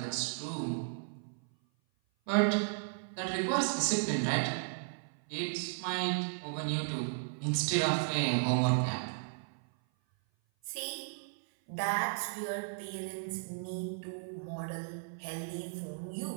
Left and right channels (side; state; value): left; silent; 54 dB below the other